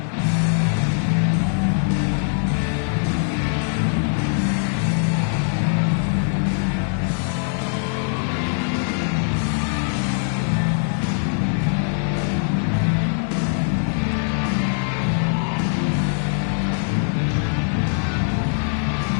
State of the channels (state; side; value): silent; right; 64 dB below the other